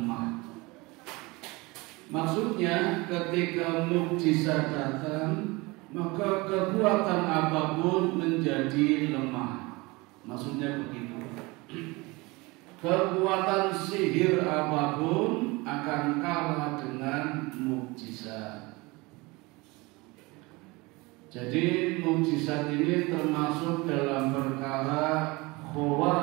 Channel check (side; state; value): left; quieter; 24.1 dB